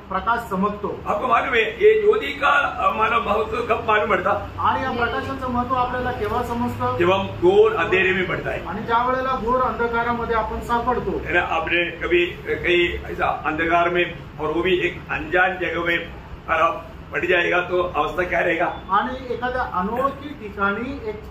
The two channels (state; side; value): identical; both; correlation 1.00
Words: प्रकाश चमकतो. आपको मालूम है ये ज्योति का मानव महत्व कब मालूम पड़ता. आणि या प्रकाशाचं महत्व आपल्याला केव्हा समजतं. जब हम घोर अंधेरे में पड़ता है. आणि ज्या वेळेला घोर अंधकारामध्ये आपण सापडतो. है ना. आपने कभी कहीं ऐसा अंधकार में और वो भी एक अनजान जगह में पड़ जाएगा तो अवस्था क्या रहेगा. आणि एखाद्या अनोळखी ठिकाणी एक